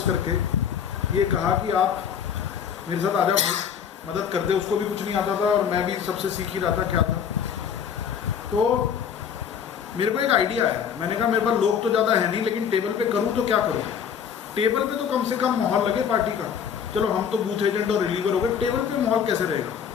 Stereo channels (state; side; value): quieter; right; 7.8 dB